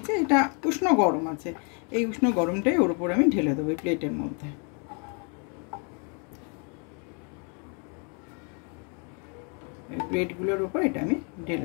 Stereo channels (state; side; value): quieter; right; 37.4 dB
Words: এটা উষ্ণ গরম আছে, এই উষ্ণ গরমটাই ওর উপর আমি ঢেলে দেবো এই প্লেটের মধ্যে। এই প্লেটগুলোর উপর এটা আমি